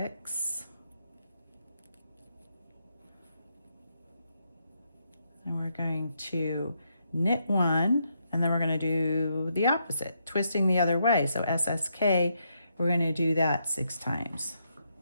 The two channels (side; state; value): both; inverted; correlation -0.79